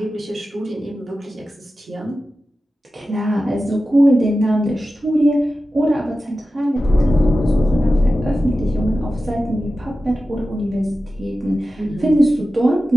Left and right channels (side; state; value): both; normal; correlation 0.93